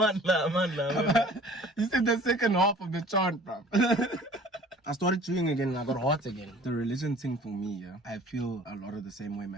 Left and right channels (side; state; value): both; normal; correlation 0.49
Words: You said the second half of the chant, bro. I started chewing again and I got hot again. The religion thing for me, yeah, I feel a lot of the same way